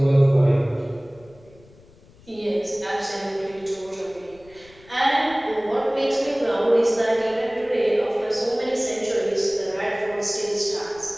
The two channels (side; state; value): left; noise; rumble, 26 dB below the sound